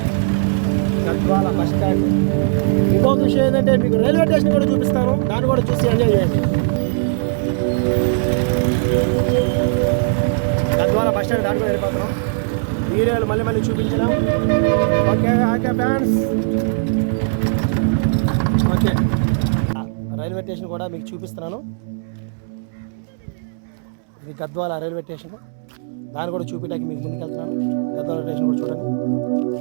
Gadwal bus stand. ఇంకొక విషయం ఏంటంటే మీకు రైల్వే స్టేషన్ కూడా చూపిస్తాను, దాన్ని కూడా చూసి ఎంజాయ్ చేయండి. గద్వాల బస్ స్టాండ్ దాటి కూడా వెళ్ళిపోతున్నాం. ఏరియాలు మళ్ళీ చూపించలేము. Okay okay fans. Okay railway station కూడా మీకు చూపిస్తున్నాను. ఇది గద్వాల రైల్వే స్టేషన్, దాన్ని కూడా చూపించడానికి మీకు ముందుకు వెళ్తున్నాను. గద్వాల స్టేషన్ కూడా చూడండి.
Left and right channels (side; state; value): left; silent; 66 dB below the other